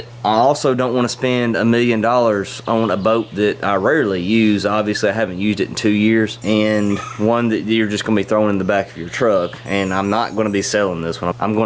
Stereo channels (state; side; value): identical; both; correlation 1.00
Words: I also don't want to spend $1 million on a boat that I rarely use. Obviously, I haven't used it in 2 years, and one that you're just going to be throwing in the back of your truck, and I'm not going to be selling this one. I'm